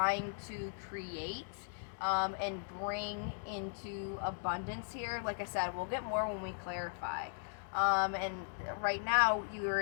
to create. and bring into abundance here. Like I said, we'll get more when we clarify. And right now, you're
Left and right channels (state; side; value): silent; right; digital silence